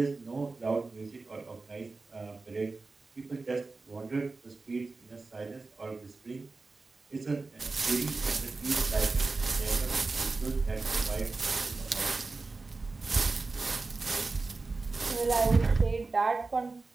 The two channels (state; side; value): quieter; left; 3.8 dB